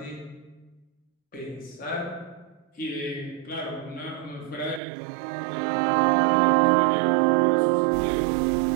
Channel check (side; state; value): left; drops out; at 4.8 s